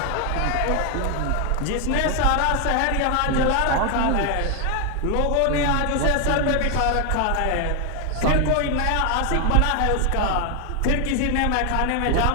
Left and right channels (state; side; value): different; both; correlation 0.00